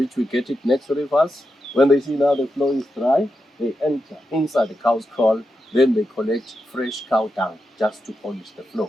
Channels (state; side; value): normal; both; correlation 0.87